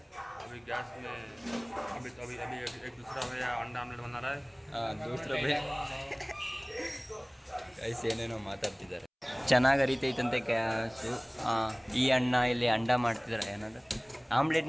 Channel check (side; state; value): both; identical; correlation 1.00